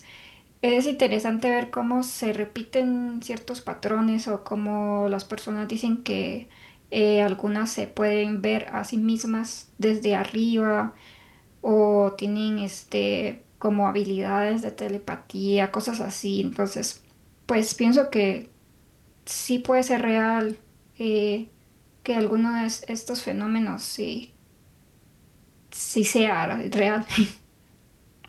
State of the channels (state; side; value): identical; both; correlation 1.00